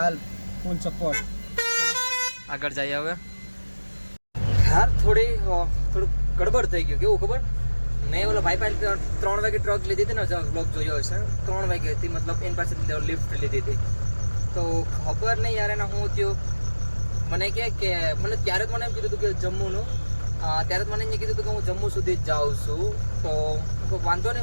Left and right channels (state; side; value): inverted; both; correlation -1.00